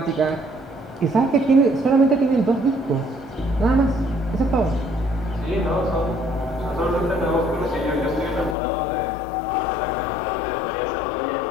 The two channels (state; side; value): drops out; right; at 8.6 s